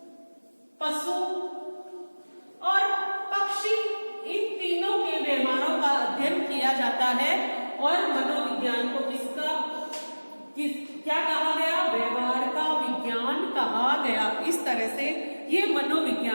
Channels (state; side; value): inverted; both; correlation -1.00